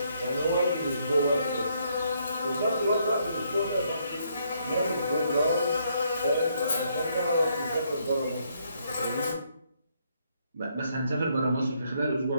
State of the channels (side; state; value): both; inverted; correlation -0.72